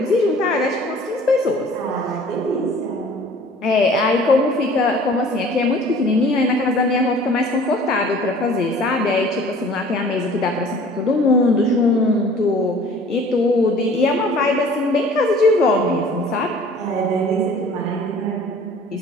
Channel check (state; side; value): normal; both; correlation 0.49